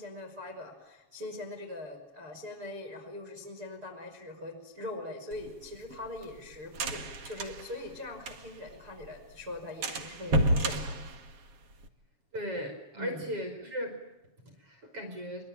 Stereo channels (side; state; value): left; late; 7.2 ms